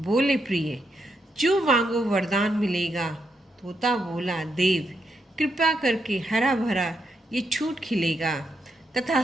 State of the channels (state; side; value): normal; both; correlation 0.81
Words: प्रिय, जो मांगो वरदान मिलेगा। तोता बोला, देव कृपा करके हरा भरा ये छूट खिलेगा।